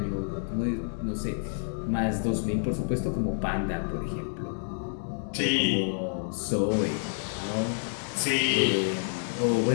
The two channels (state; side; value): silent; right; digital silence